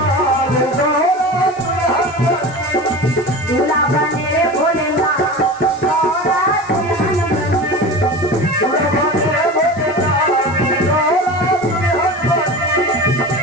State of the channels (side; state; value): left; noise; hiss, 24 dB below the sound